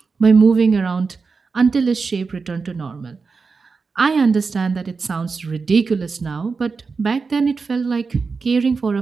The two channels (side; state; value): left; quieter; 4.7 dB